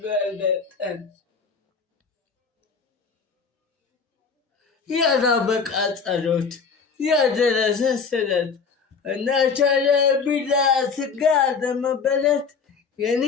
ያላበቃ ጸሎት ያደረሰ ስለት እናቻለ ቢላ ስጋ ለመበለት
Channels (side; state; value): right; quieter; 5.5 dB